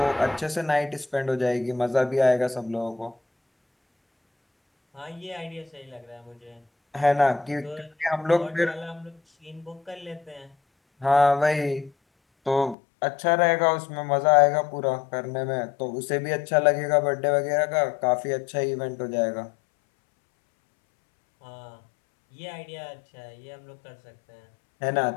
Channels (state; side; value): drops out; right; at 12.8 s